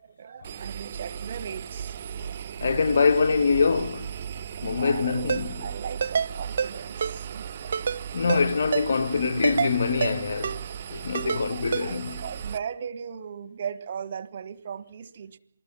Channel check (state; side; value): inverted; both; correlation -0.81